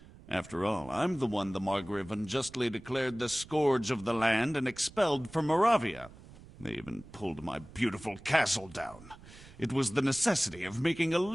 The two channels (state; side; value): noise; right; rumble, 20 dB below the sound